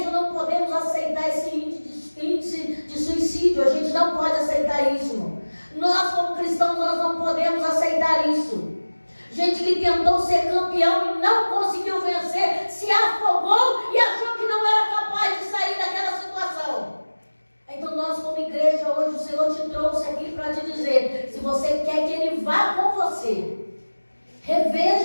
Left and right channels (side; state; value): both; inverted; correlation -1.00